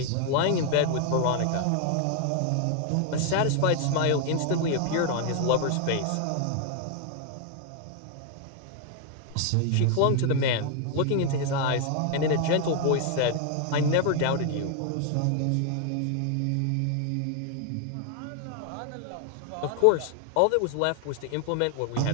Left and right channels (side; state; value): both; different; correlation 0.00